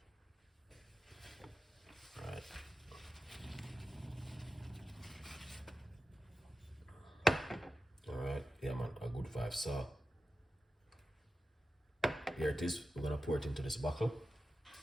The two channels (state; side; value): normal; both; correlation 0.92